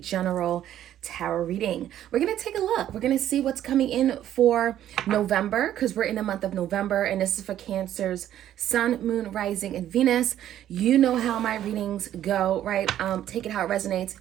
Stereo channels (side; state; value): left; quieter; 11.6 dB